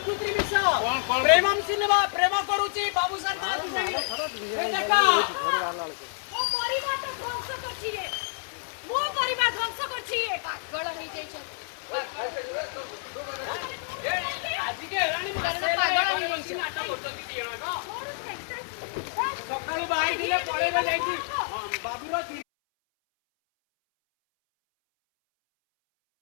विषय प्रेमम सिनेमा प्रेम करूची बाबू सरकार देखा मो परिवार तो ध्वंस करछि ए मो परिवार ध्वंस करछि ए पागल होई जाय छ आजी के रानी पागल होई बंसी नाटक करछंती दियण न सकाळू बाई दिले पळेबे जाईची बाबूर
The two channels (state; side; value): silent; right; 59 dB below the other